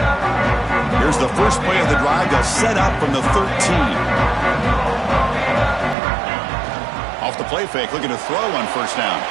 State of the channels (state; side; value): drops out; left; at 6.0 s